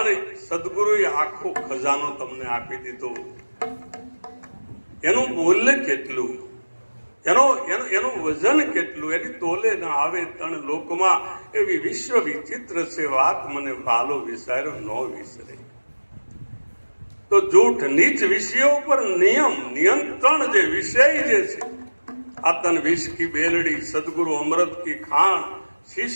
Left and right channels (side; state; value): both; inverted; correlation -1.00